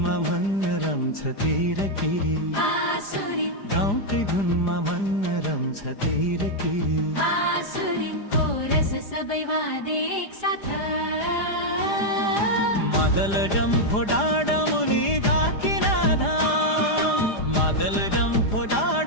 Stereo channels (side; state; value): right; late; 4.9 ms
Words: मन रम्छ तिरकिरी गाउँकै धुनमा मन रम्छ तिरकिरी सबै वादे एक साथ मादल डम्फो डाँडा मुनि धाकिनाधा मादल डम्फो